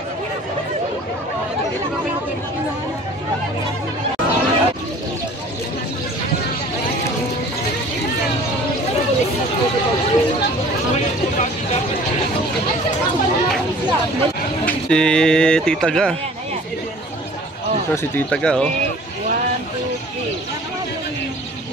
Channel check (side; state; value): both; normal; correlation 0.48